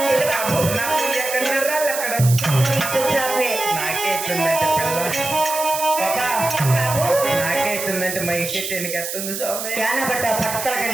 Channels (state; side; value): noise; right; hiss, 5 dB below the sound